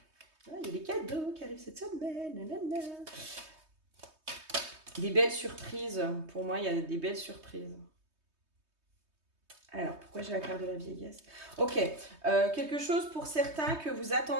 Il y a des cadeaux qui arrivent cette semaine. Nanana. Des belles surprises. Pour moi, il y a des belles surprises. Alors, pourquoi j'ai la carte de la vieillesse? Ok, quelque chose pour certains que vous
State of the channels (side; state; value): left; late; 3.2 ms